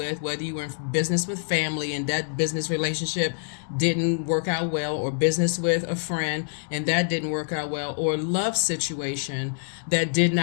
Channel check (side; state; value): right; silent; digital silence